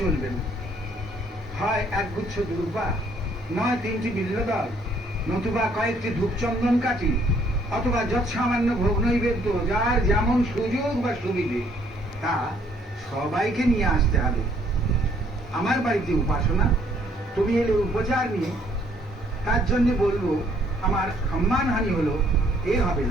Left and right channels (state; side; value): normal; both; correlation 0.65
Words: চলবে না। হয় একগুচ্ছ দুর্বা, নয় 3টি বিল্লদল, নতুবা কয়েকটি ধূপচন্দন কাঠি, অথবা যৎসামান্য ভোগ নৈবেদ্য, যার যেমন সুযোগ বা সুবিধে তা সবাইকে নিয়ে আসতে হবে। আমার বাড়িতে উপাসনা, তুমি এলে উপচার নিয়ে, তার জন্য বলবো আমার সম্মানহানি হলো, এ হবে